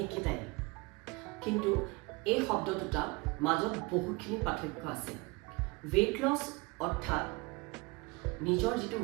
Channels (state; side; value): quieter; left; 26.0 dB